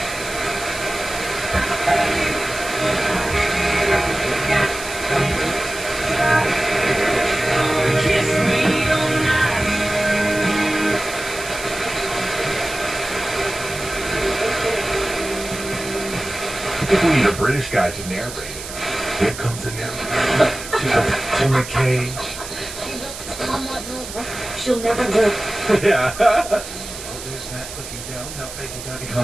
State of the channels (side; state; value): right; noise; hiss, 11 dB below the sound